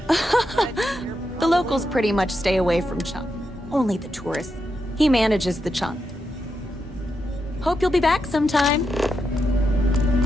The locals pretty much stay away from Chunk. Only the tourists. He manages the Chunk. Hope you'll be back sometime.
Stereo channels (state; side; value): normal; both; correlation 0.85